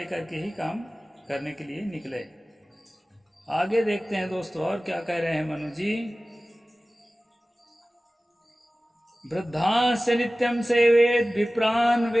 के ही काम करने के लिए निकले। आगे देखते हैं दोस्तों और क्या कह रहे हैं मनु जी। वृद्धांश नित्यम सेवेद विप्रान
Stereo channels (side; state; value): both; normal; correlation 0.97